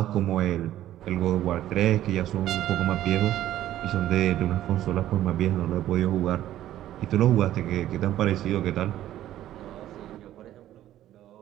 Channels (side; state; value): left; quieter; 13.0 dB